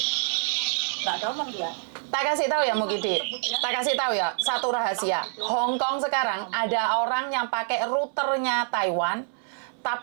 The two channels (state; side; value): silent; left; 61 dB below the other